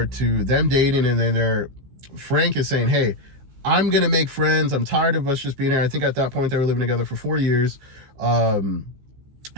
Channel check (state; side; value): late; left; 15 ms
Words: to them dating, and then Frank is saying, hey, I'm gonna make friends. I'm tired of us just being here. I think at that point they were living together for 4 years.